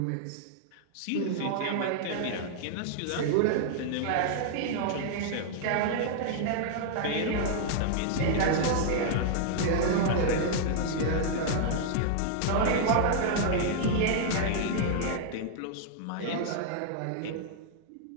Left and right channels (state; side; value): different; both; correlation -0.01